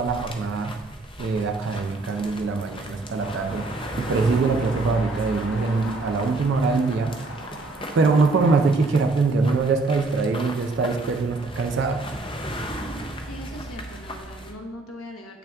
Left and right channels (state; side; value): quieter; left; 3.5 dB